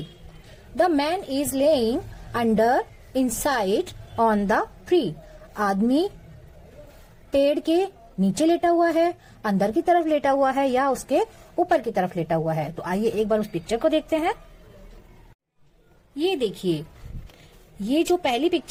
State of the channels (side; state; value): both; identical; correlation 1.00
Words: the man is laying under inside on the tree. आदमी पेड़ के नीचे लेटा हुआ है, अंदर की तरफ लेटा हुआ है या उसके ऊपर की तरफ लेटा हुआ है। तो आइए एक बार उस पिक्चर को देखते हैं। ये देखिए, ये जो पहली